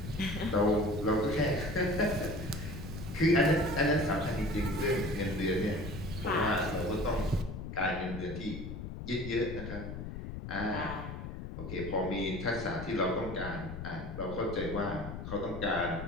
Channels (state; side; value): noise; left; rumble, 8 dB below the sound